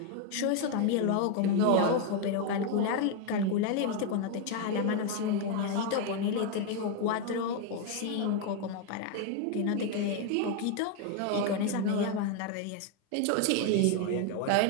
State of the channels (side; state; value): both; different; correlation 0.01